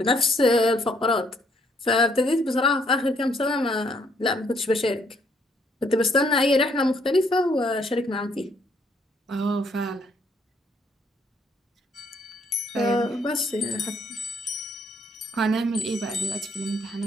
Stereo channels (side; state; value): both; normal; correlation 0.68